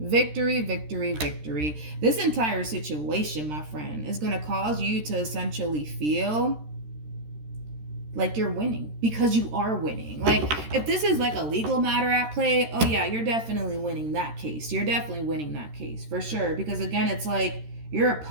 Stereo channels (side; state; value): left; late; 13 ms